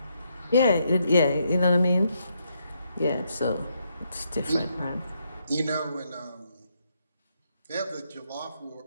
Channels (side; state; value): both; inverted; correlation -0.77